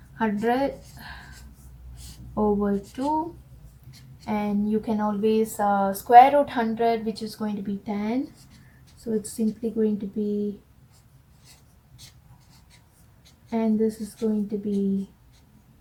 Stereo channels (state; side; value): identical; both; correlation 1.00